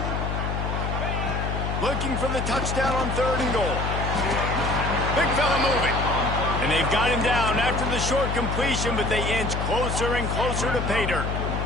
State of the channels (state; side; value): noise; left; hum, 2 dB below the sound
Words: Looking for the touchdown on 3rd and goal. Big fella moving. And they've got him down after the short completion, but they inch closer and closer to pay dirt.